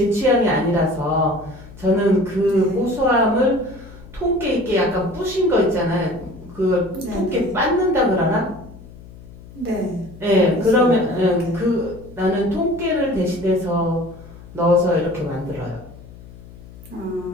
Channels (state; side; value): noise; left; hum, 18 dB below the sound